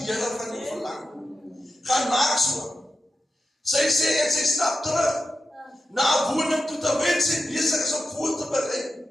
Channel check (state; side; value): normal; both; correlation 0.91